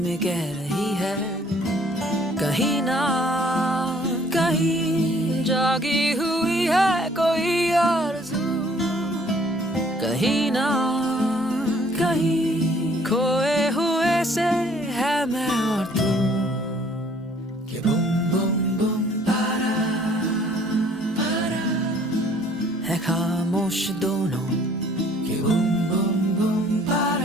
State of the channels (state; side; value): normal; both; correlation 0.58